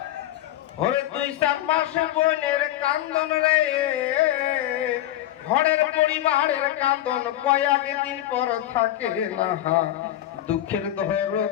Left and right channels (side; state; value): right; quieter; 13.5 dB